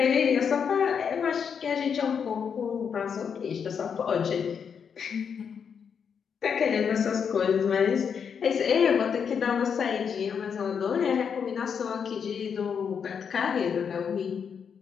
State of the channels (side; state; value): right; quieter; 6.9 dB